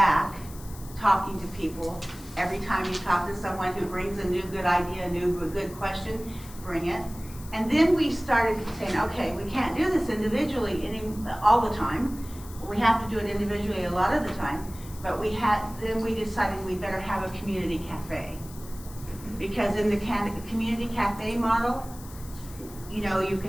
talking to people. Every time you talk to someone who brings a new good idea, a good question, bring it. And then we started saying, okay, we can't do this individually all the time. We have to do it individually a lot of the time. But then we decided we better have a community cafe. Because in the community cafe model, you know, you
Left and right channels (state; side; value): noise; left; hiss, 18 dB below the sound